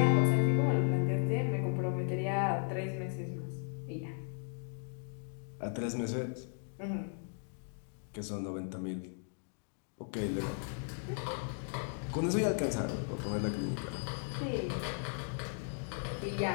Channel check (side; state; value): right; silent; 54 dB below the other